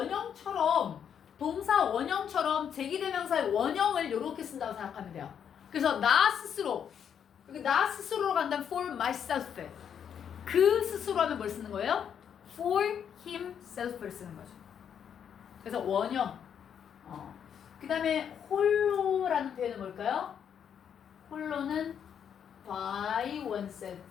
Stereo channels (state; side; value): quieter; right; 8.2 dB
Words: 제기대명사의 원형을 이렇게 쓴다고 생각하면 돼요. 그래서 나 스스로, 여기 나 스스로로 간다면 for myself. 그 스스로 하면 뭘 쓰는 거예요? for himself를 쓰는 거죠. 그래서 원형. 그 다음에 홀로라는 표현은 뭘까요? 홀로는 by